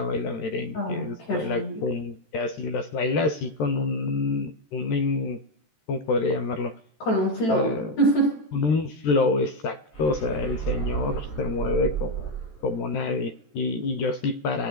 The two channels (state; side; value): late; right; 13 ms